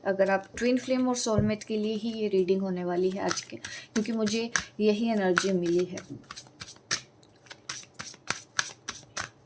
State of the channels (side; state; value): both; identical; correlation 1.00